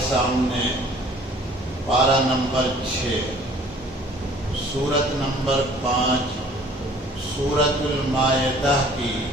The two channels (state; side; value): normal; both; correlation 0.53